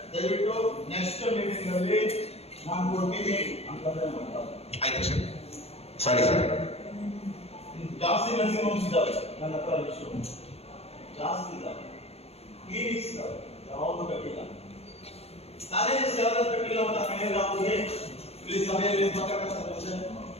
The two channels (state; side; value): late; right; 0.29 ms